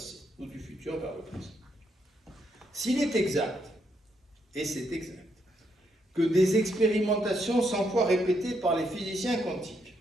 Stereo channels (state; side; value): normal; both; correlation 0.77